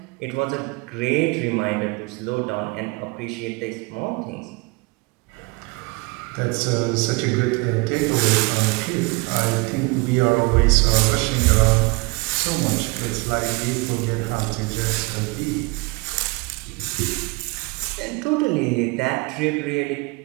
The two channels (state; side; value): quieter; left; 27.0 dB